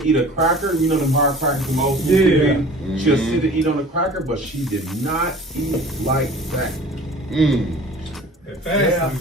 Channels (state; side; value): normal; both; correlation 0.44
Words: eat a cracker. You know, the hard crackers, the old food. Yeah. She'll sit and eat on a cracker, but she did not eat like that. Yeah.